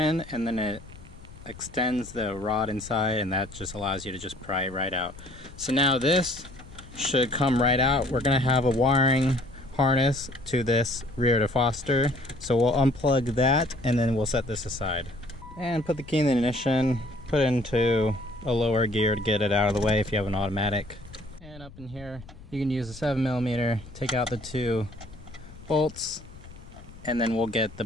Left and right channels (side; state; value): left; noise; rumble, 18 dB below the sound